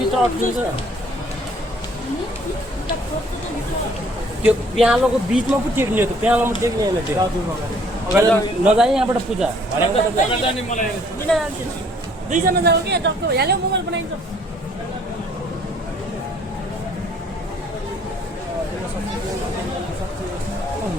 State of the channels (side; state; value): both; normal; correlation 0.60